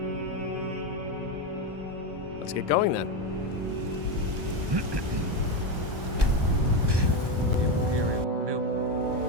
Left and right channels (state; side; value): late; left; 1.2 ms